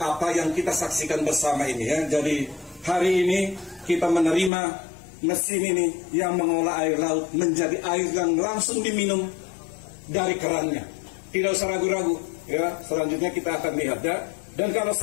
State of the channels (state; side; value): drops out; right; at 4.5 s